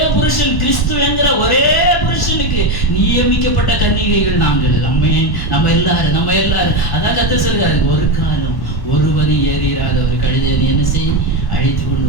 புருஷன், கிறிஸ்து என்கிற ஒரே புருஷனுக்கு நியமிக்கப்பட்ட கன்னிகைகள் நாங்கள். நம்ம எல்லாரும் அதான் கர்த்தர் சொல்றாரு, ஒரு காலம் ஒருவனி ஏறிராத ஒரு கழுதை நீ என்ன செய், அழைத்து கொண்டு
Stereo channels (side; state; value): right; late; 1.1 ms